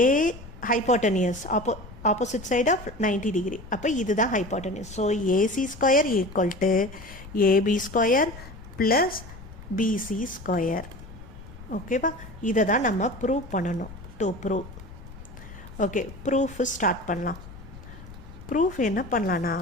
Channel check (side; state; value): left; noise; rumble, 16 dB below the sound